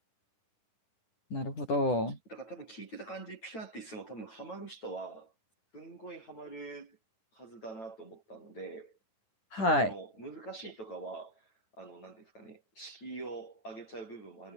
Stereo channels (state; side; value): late; right; 9.1 ms